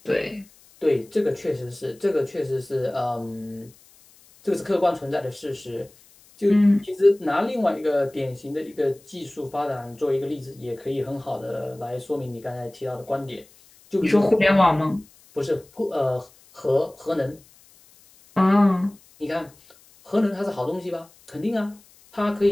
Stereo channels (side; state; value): left; noise; hiss, 27 dB below the sound